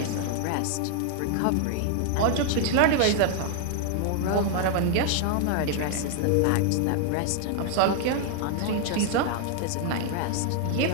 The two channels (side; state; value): both; different; correlation 0.00